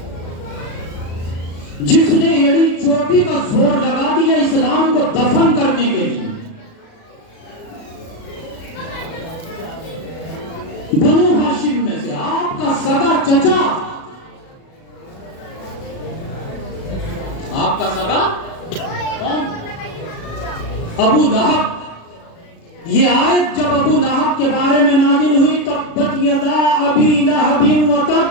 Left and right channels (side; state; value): right; late; 36 ms